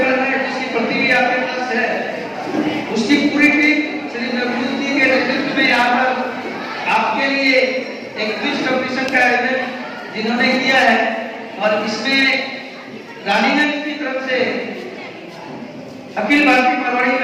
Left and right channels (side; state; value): both; identical; correlation 1.00